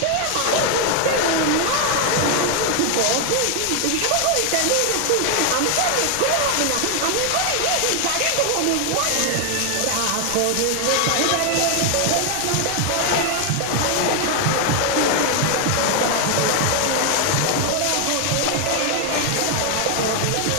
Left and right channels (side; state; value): both; different; correlation 0.00